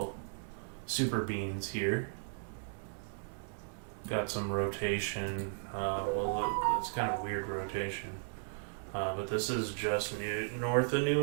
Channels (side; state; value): left; silent; 54 dB below the other